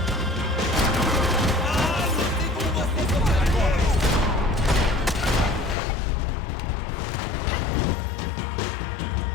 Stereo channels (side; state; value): right; drops out; at 5.8 s